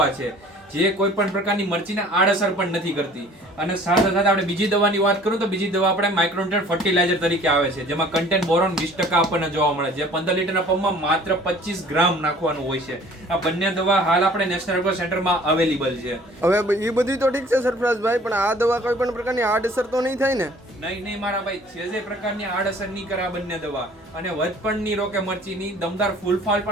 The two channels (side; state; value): both; normal; correlation 0.51